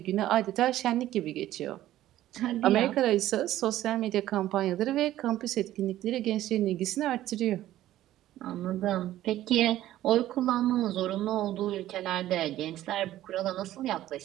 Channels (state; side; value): quieter; left; 13.9 dB